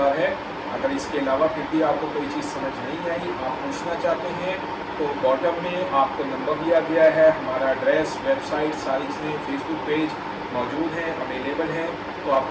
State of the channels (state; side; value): identical; both; correlation 1.00